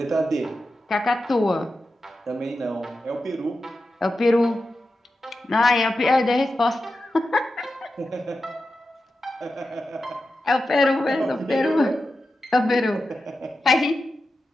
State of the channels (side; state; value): both; normal; correlation 0.91